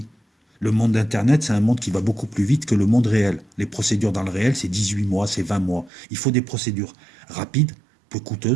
Le monde d'Internet, c'est un monde qui va beaucoup plus vite que le monde réel. Les procédures dans le réel, c'est 18 mois, c'est 20 mois. Il faut des procédures rapides, peu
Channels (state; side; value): drops out; left; at 5.9 s